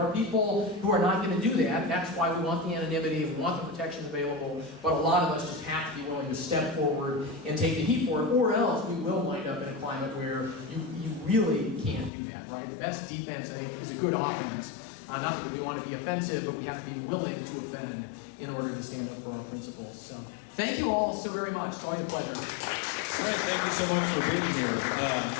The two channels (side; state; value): right; drops out; at 12.1 s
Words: are people who are not going to do that. That's why we want the anonymity, we want the protections available, but a lot of us just have to be willing to step forward and take the heat for it, or else we will wind up in a climate where you really can't do that, right? The best defense, I think, is a good offense. Not that we want to be offensive, but we have to be willing to offend in order to stand up for our principles. So, thank you all so very much. It's always a pleasure. Trent, thank you so much for being here.